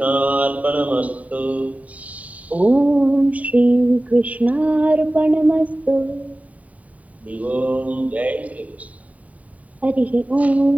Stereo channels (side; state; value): left; late; 0.069 ms